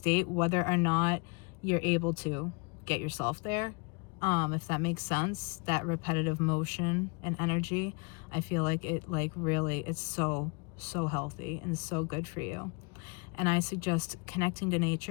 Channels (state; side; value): quieter; right; 33.5 dB